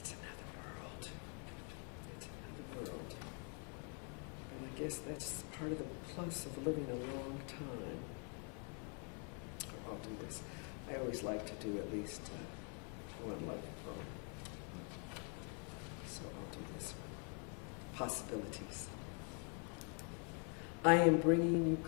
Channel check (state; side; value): quieter; right; 39.6 dB